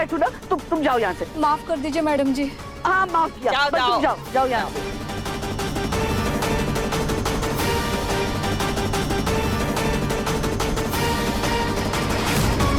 ना, तुम जाओ यहाँ से। माफ कर दीजिए मैडम जी। हाँ माफ किया, जाओ, पर तुम जाओ यहाँ से।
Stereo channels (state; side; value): identical; both; correlation 1.00